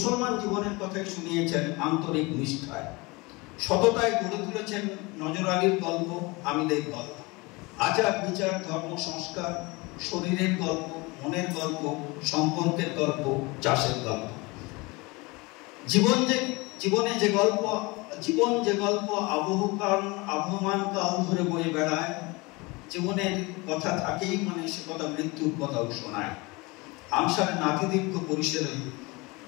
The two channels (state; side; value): quieter; right; 25.0 dB